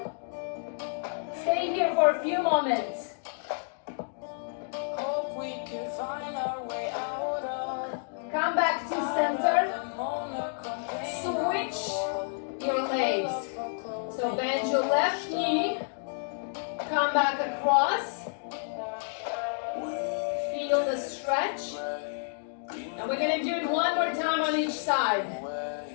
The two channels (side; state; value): right; silent; digital silence